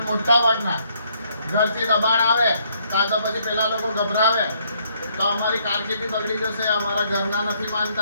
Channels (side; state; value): both; inverted; correlation -0.69